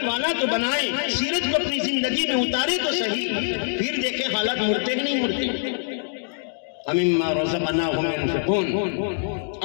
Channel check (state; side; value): silent; right; digital silence